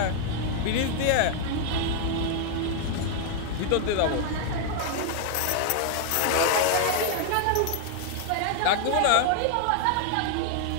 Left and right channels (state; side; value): different; both; correlation 0.00